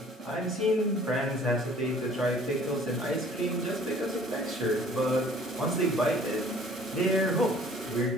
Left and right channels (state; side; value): normal; both; correlation 0.53